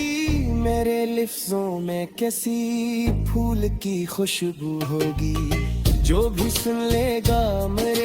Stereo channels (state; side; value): identical; both; correlation 1.00